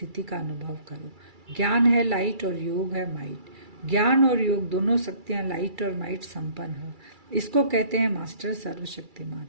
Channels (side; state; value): left; late; 2.3 ms